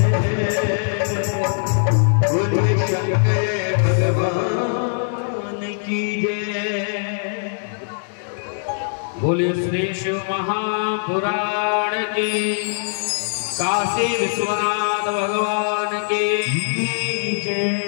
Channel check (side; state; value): right; silent; digital silence